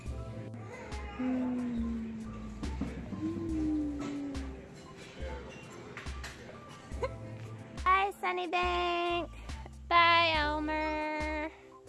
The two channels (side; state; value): both; identical; correlation 1.00